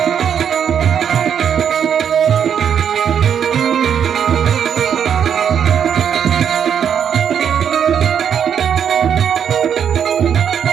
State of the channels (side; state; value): left; quieter; 8.2 dB